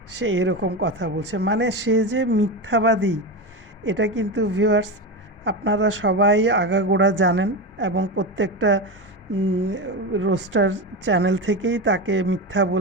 সে এরকম কথা বলছে, মানে সে যে মিথ্যাবাদী এটা কিন্তু ভিউয়ার্স আপনারা সবাই আগাগোড়া জানেন এবং প্রত্যেকটা রোস্টার চ্যানেল থেকেই তাকে মিথ্যা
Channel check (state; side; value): normal; both; correlation 0.18